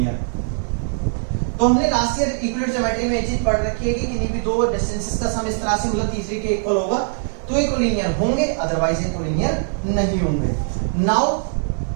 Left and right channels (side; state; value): left; silent; digital silence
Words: तो हमने लास्ट ईयर इक्विवेलेंट ज्योमेट्री में ये चीज पढ़ रखी है कि किन्हीं भी दो डिस्टेंसेस का सम इस तरह से मतलब तीसरे के इक्वल होगा तो ये कोलिनियर होंगे, अदरवाइज ये कोलिनियर नहीं होंगे। Now